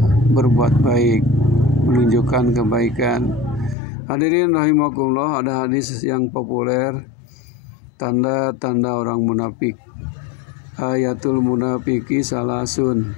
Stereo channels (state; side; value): drops out; right; at 3.8 s